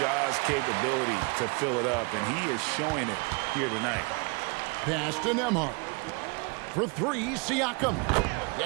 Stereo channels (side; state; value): left; quieter; 32.0 dB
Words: capability to fill it up, and he is showing it here tonight. Pass to Nembhard. For 3, Siakam.